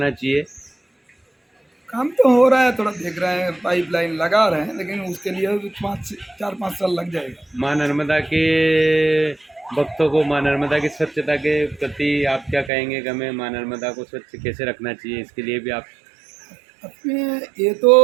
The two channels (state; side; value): drops out; left; at 12.7 s